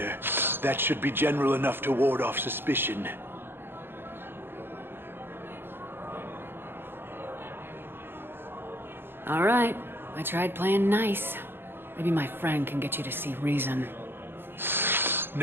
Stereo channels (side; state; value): left; late; 0.10 ms